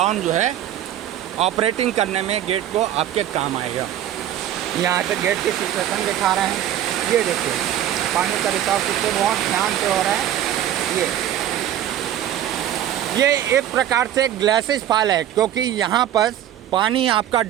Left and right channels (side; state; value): left; quieter; 11.5 dB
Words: जो है ऑपरेटिंग करने में गेट को आपके काम आएगा। यहाँ से गेट की सिचुएशन दिखा रहे हैं, ये देखिए पानी का रिसाव कितने बहुत ध्यान से हो रहा है। ये एक प्रकार से ग्लासेस फॉल है, क्योंकि यहाँ पर पानी आपका